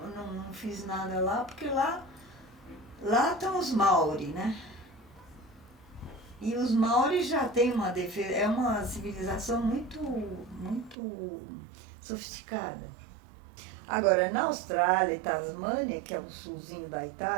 não fiz nada lá, porque lá estão os Maori, né? E os Maori já têm uma defesa, é uma civilização muito, muito sofisticada. Agora, na Austrália e Tasmânia, que é o sulzinho da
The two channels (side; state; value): left; drops out; at 11.0 s